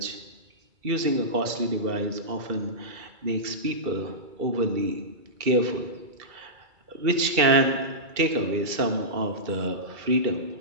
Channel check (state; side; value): late; left; 2.3 ms